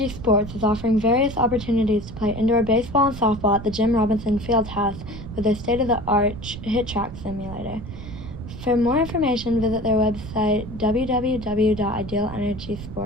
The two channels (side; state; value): right; noise; rumble, 11 dB below the sound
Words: Sports is offering various opportunities to play indoor baseball and softball at the Jim Robinson Fieldhouse with their state-of-the-art hit track simulator. For more information, visit their website